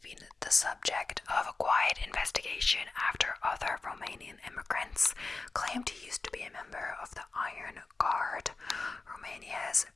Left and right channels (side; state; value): right; quieter; 3.8 dB